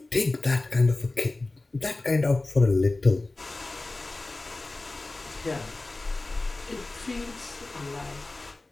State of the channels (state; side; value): quieter; right; 3.1 dB